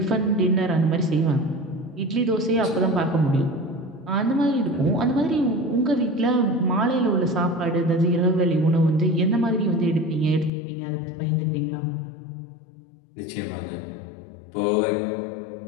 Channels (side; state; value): right; drops out; at 10.5 s